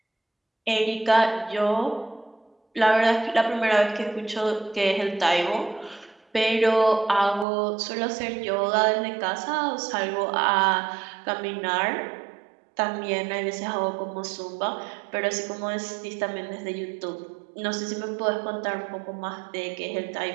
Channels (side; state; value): left; drops out; at 7.5 s